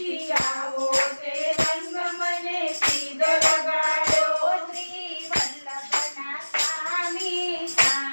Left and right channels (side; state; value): both; inverted; correlation -1.00